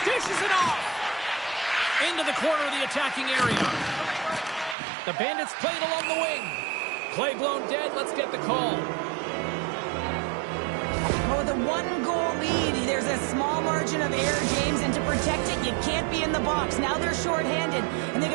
Dishes it off. Into the corner of the attacking area. The Bandits played along the wing. Play blown dead. Let's get the call. Well, with a one-goal lead, there's a small margin of error, James, and to protect it, you can't be in the box. Now they're shorthanded, and they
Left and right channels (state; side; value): drops out; left; at 4.8 s